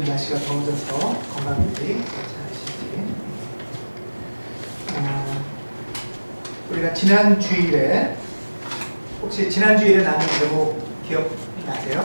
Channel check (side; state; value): both; inverted; correlation -1.00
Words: 날씨가 더워져서 건강들이 괜찮으신지. 우리가 지난 주일에 혹시 지난 주일에 나눈 제목